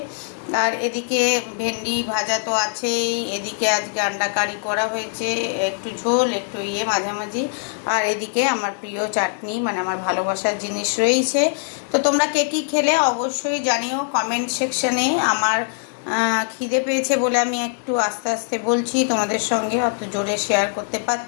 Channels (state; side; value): silent; right; digital silence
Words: আর এদিকে ভেন্ডি ভাজা তো আছেই, এদিকে আজকে আন্ডা কারি করা হয়েছে, একটু ঝোল একটু মাঝামাঝি। আর এদিকে আমার প্রিয় চাটনি, মানে আমার ভালোবাসার জিনিস রয়েছে। তো তোমরা কে কী খেলে অবশ্যই জানিও কমেন্ট সেকশনে। আমার খিদে পেয়েছে বলে আমি একটু আস্তে আস্তে বলছি তোমাদের সঙ্গে, অত জোরে শেয়ার করতে